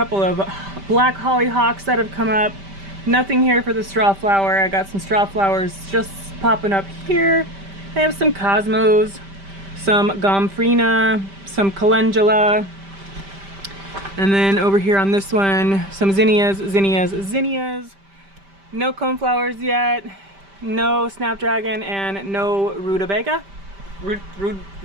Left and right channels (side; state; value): left; late; 5.1 ms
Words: of black hollyhocks that have come up. Nothing here for the straw flower. I got some straw flowers just popping up here. I have some cosmos, some gomphrena, some calendula, and then over here on this one, some zinnias. No coneflowers yet, no snapdragon, and no rutabaga.